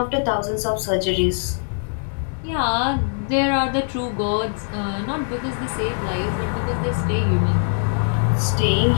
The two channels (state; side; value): silent; right; digital silence